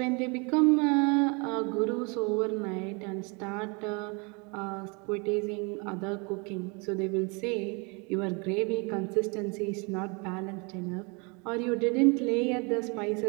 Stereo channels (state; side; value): quieter; left; 31.5 dB